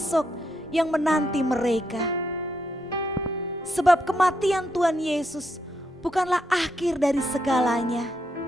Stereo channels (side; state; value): both; normal; correlation 0.79